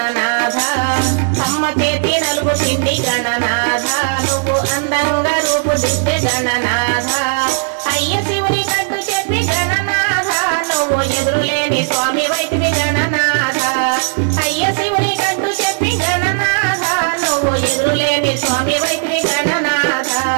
అమ్మ చేతి నలుగు పిండి గణనాథ నువ్వు అందంగా రూపుదిద్దే గణనాథ అయ్య శివుని కట్టు చెప్పి గణనాథ నువ్వు ఎదురులేని స్వామి వైద్యుడి గణనాథ అయ్య శివుని కట్టు చెప్పి గణనాథ నువ్వు ఎదురులేని స్వామి వైద్యుడి గణనాథ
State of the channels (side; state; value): left; silent; digital silence